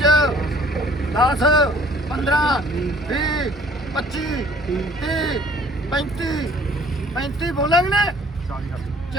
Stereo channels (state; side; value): normal; both; correlation 0.56